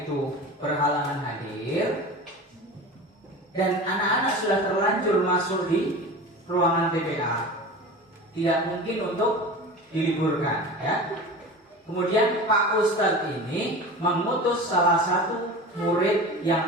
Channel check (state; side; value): normal; both; correlation 0.33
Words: itu berhalangan hadir dan anak-anak sudah terlanjur masuk di ruangan TPA, tidak mungkin untuk diliburkan, ya. Kemudian Pak Ustadz ini mengutus salah satu murid